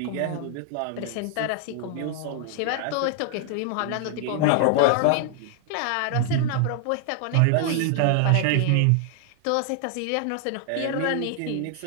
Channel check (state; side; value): different; both; correlation 0.00